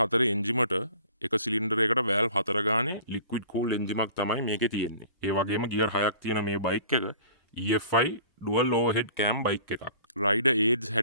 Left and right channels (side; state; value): both; inverted; correlation -0.48